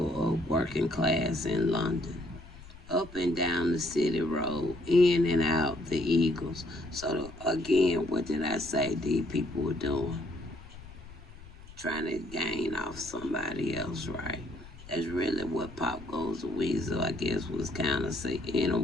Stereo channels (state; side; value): noise; left; rumble, 18 dB below the sound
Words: of working class in London, up and down the city road, in and out the Eagles. So again, what did I say these people were doing? Trying to gain off somebody else, right? That's really what Pop Goes the Weasel, I guess, was kind of in a